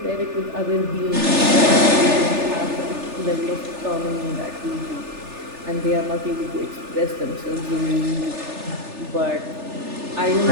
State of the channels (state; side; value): late; left; 3.4 ms